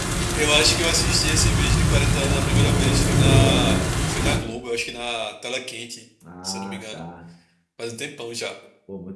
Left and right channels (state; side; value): identical; both; correlation 1.00